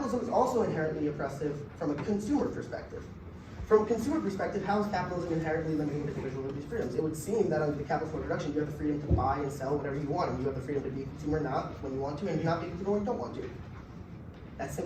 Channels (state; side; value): identical; both; correlation 1.00